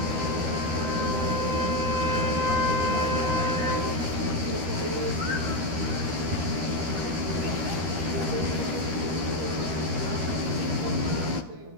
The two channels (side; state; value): left; late; 13 ms